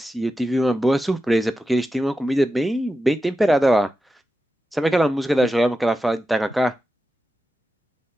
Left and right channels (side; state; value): both; normal; correlation 0.91